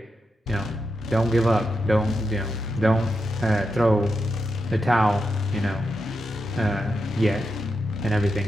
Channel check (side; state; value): both; normal; correlation 0.86